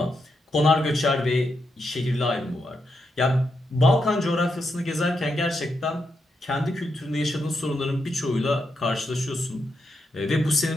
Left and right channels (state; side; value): normal; both; correlation 0.83